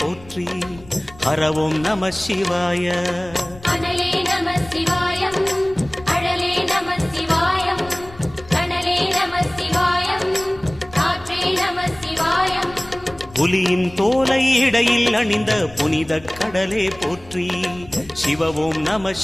போற்றி. ஹரவும் நம சிவாய. அனலே நம சிவாயம், அழலே நம சிவாயம், கனலே நம சிவாயம், காற்றே நம சிவாயம். புலியின் தோலை இடையில் அணிந்த புனித கடலே போற்றி. சிவவும் நம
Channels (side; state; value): left; noise; rumble, 20 dB below the sound